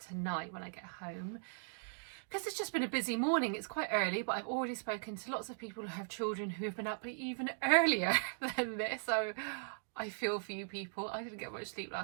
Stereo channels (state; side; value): silent; left; digital silence